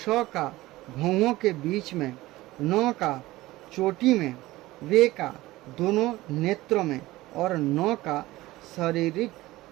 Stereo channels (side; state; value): left; quieter; 18.1 dB